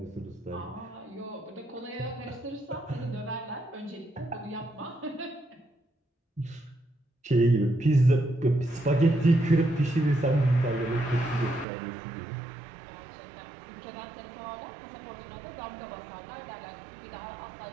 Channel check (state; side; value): drops out; left; at 11.7 s